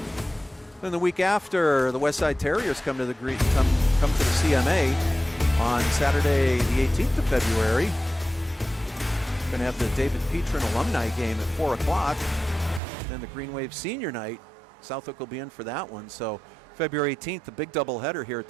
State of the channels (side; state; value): left; drops out; at 12.8 s